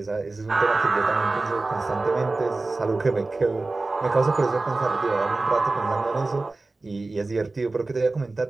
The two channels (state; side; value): quieter; left; 3.3 dB